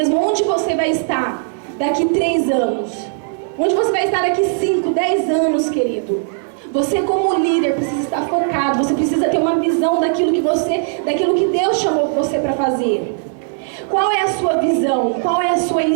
Onde você vai estar daqui 3 anos? Onde você vai estar daqui 5, 10 anos, querido? Você como líder precisa estar focado, você precisa ter uma visão daquilo que Deus chamou você para fazer. Qual é a sua visão? Qual é a sua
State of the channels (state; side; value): silent; left; digital silence